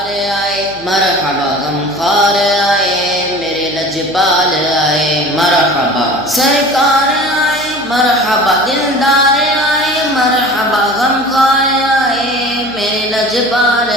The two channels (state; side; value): noise; right; hum, 20 dB below the sound